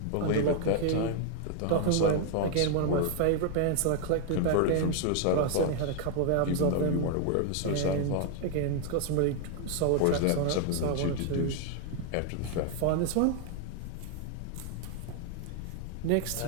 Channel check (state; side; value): different; both; correlation 0.00